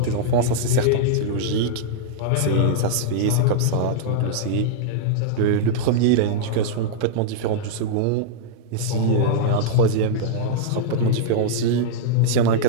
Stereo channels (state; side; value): different; both; correlation -0.02